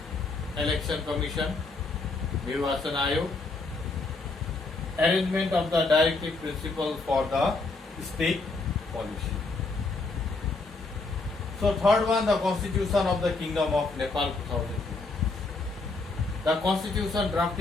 Election Commission, Nirvachan Ayog, arrangement of the directive principle for the state policy. So third one, the Constitution of the Kingdom of Nepal 2002. The Constitution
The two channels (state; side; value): quieter; right; 3.6 dB